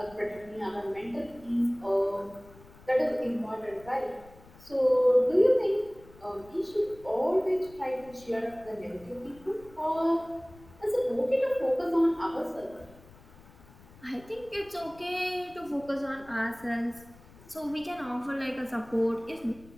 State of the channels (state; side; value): noise; left; rumble, 23 dB below the sound